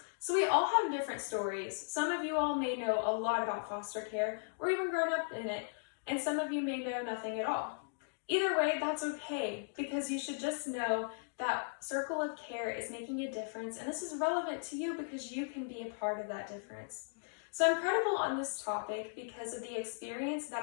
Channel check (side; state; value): right; silent; digital silence